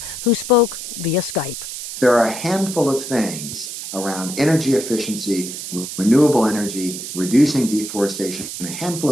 who spoke via Skype. There are a handful of things around energy efficiency, renewable energy, reducing deforestation, a handful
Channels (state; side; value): noise; right; hiss, 8 dB below the sound